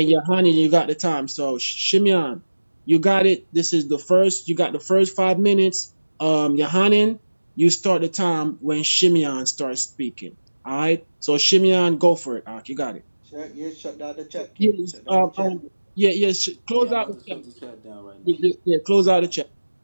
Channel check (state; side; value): inverted; both; correlation -1.00